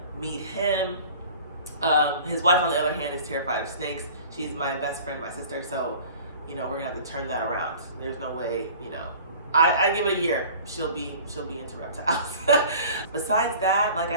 meet him. His wife, on the other hand, is terrified of snakes. She's my best friend, my sister, so, we're gonna have to turn that around. There's no way, I give it a year, she'll be into reptiles. Besides that, like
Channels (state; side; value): inverted; both; correlation -0.44